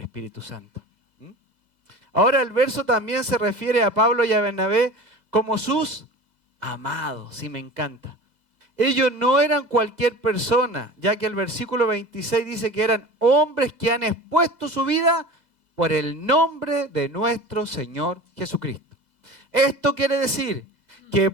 Espíritu Santo. Ahora el verso también se refiere a Pablo y a Bernabé como sus amados, y me encanta. Ellos no eran cualquier persona, ya que el versículo 26 dice que eran hombres que han expuesto su vida por el nombre de nuestro Señor Jesucristo. Esto quiere decir que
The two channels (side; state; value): left; late; 2.0 ms